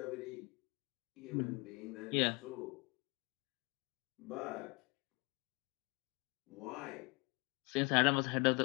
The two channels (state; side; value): quieter; right; 28.2 dB